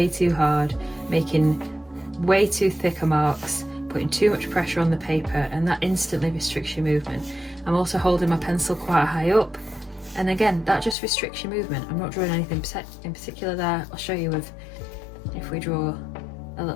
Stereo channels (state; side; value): drops out; right; at 11.0 s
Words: too hard, making way too thicker marks, putting too much pressure on the paper, and that instantly restricts your movement. I'm also holding my pencil quite high up, and again, that just restricts your movement. I'm not drawing anything in particular there. I'll show you if we draw a